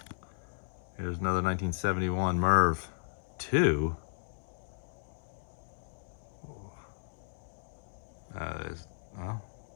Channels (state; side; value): silent; right; 55 dB below the other